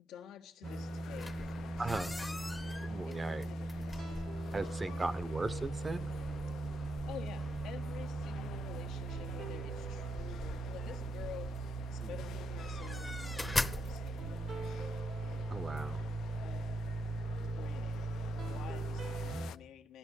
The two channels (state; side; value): normal; both; correlation 0.82